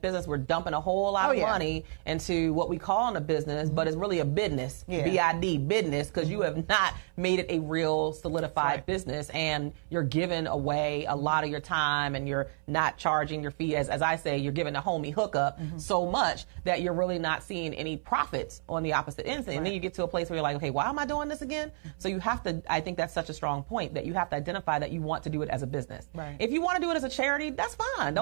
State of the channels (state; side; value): silent; left; 58 dB below the other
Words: we're dumping a whole lot of money into what we call a business, but it's really a business, B-I-D, business, because you have not made it a real solidified business, and you're giving away a lot of your time, and you're not charging your fee. As I say, you're giving a homie hookup so much that you're really not seeing any profits on the opposite end. And then you get to a place where you're like, okay, why am I doing this again? So you have to, I think that's such a strong point, that you have to identify that you want to do it as a business. Right. If you want to do it as a charity, that's fine.